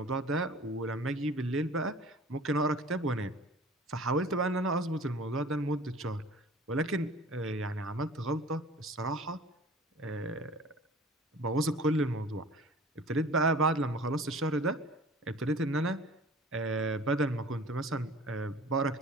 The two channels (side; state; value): both; normal; correlation 0.45